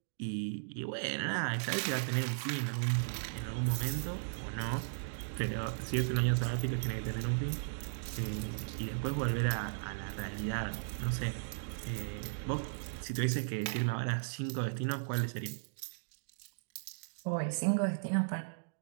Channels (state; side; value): silent; left; digital silence